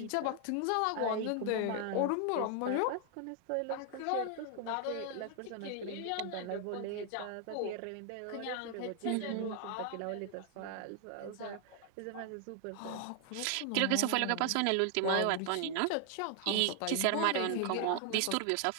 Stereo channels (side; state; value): both; different; correlation 0.00